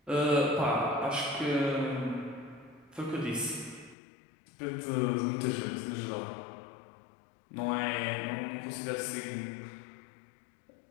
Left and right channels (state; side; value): drops out; right; at 4.0 s